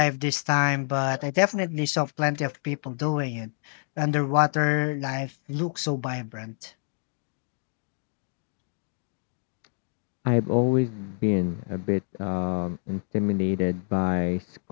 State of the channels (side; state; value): right; silent; 60 dB below the other